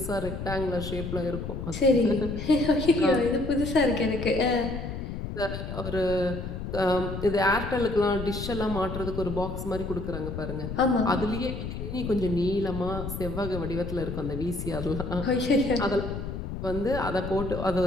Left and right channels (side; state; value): left; noise; rumble, 6 dB below the sound